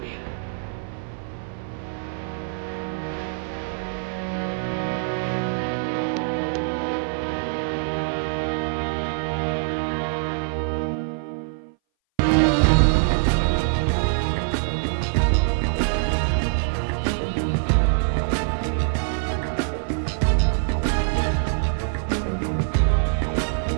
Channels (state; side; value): silent; left; 60 dB below the other